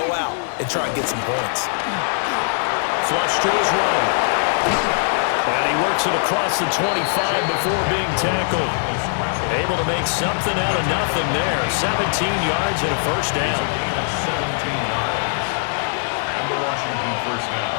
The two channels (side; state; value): right; silent; digital silence